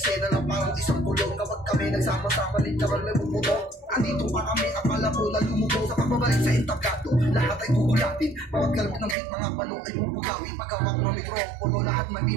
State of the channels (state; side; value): drops out; left; at 9.2 s